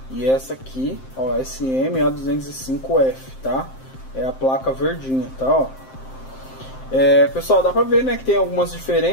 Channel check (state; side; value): late; right; 7.6 ms